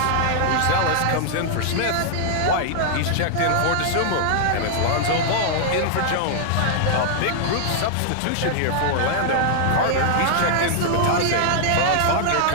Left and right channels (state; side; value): different; both; correlation -0.01